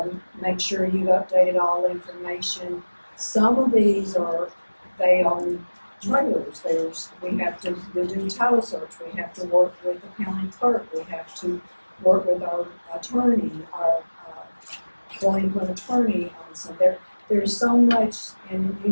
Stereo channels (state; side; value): inverted; both; correlation -1.00